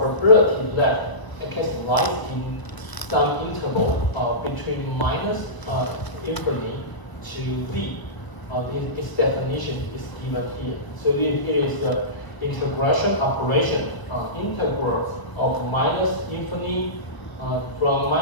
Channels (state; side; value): late; right; 1.1 ms